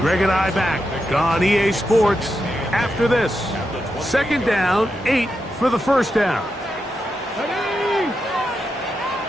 and I back on EA Sports after this. 2nd down, 8 for the 1st down.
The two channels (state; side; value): normal; both; correlation 0.86